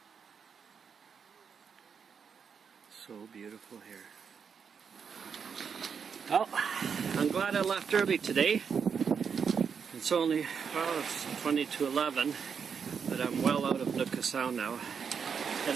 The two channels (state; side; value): quieter; left; 6.5 dB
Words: So beautiful here. Well, I'm glad I left early today. It's only, well, it's 20 to 11, but I'm well out of Nootka Sound now.